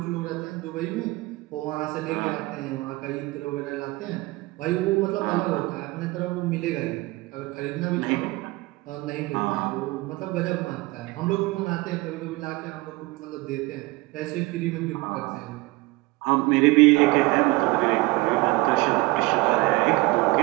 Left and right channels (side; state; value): left; quieter; 22.1 dB